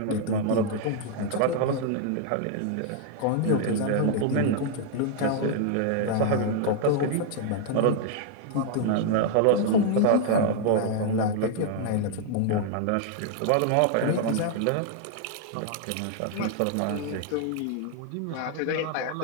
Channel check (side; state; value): both; different; correlation 0.00